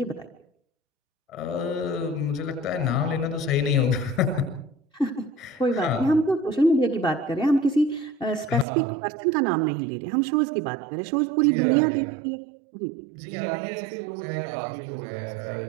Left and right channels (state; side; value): drops out; left; at 8.7 s